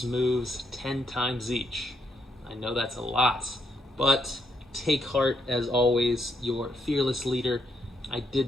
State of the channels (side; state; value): both; normal; correlation 0.77